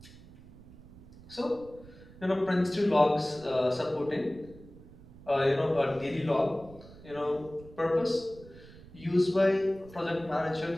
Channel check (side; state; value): right; noise; rumble, 20 dB below the sound